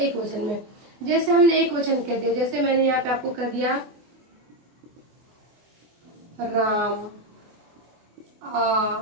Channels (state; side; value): late; left; 24 ms